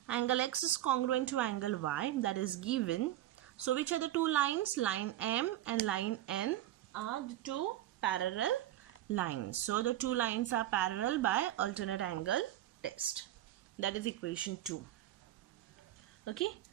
angle X is congruent to angle Y, that is given. So which are the two lines? Line M and line N are the two parallel lines. So the two lines are parallel by alternate angle test. That is equation 2. Okay.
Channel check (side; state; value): left; quieter; 13.7 dB